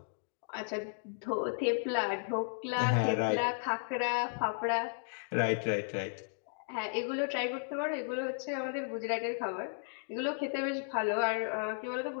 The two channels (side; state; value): right; silent; digital silence